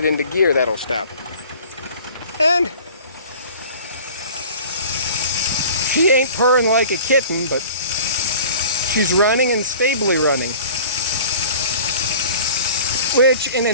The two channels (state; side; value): inverted; both; correlation -0.45